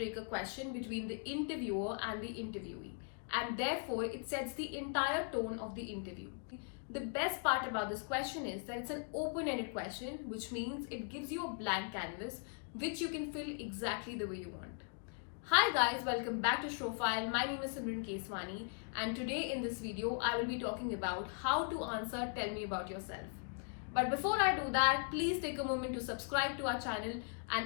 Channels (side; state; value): right; silent; 52 dB below the other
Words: question between the interviewer and the interviewee, and therefore it sets the entire tone of the interview. The best part about this question is that it's an open ended question, which means it gives you a blank canvas which you can fill exactly the way you want. Hi guys, welcome back to Showfile. My name is Simran Keswani, and today in this video I will be talking about how to answer Tell Me About Yourself. But before I do that, please take a moment to subscribe to our channel